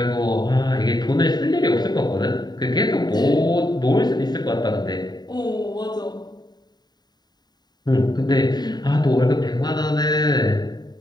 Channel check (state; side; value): late; right; 0.20 ms